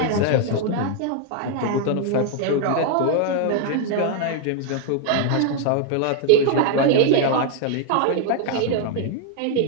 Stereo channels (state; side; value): different; both; correlation 0.00